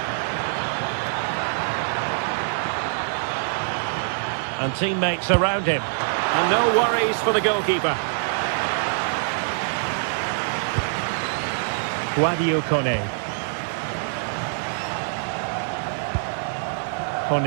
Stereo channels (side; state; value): left; silent; digital silence